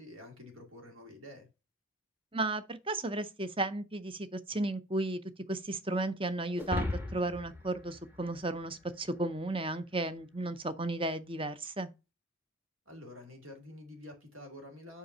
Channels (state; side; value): normal; both; correlation 0.46